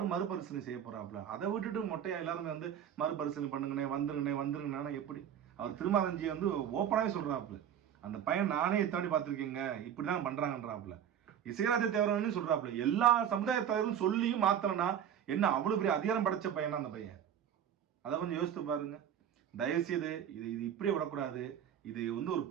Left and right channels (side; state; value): left; quieter; 9.3 dB